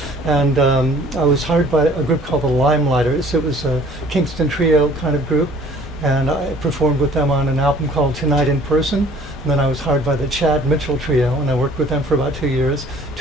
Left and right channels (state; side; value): normal; both; correlation 0.54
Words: And I was hired by a group called the Limelighters. It was a Kingston trio kind of group. And I performed with them on an album called Tonight in Person. And then I was hired by the Chad Mitchell Trio, and I worked with them for about 2 years,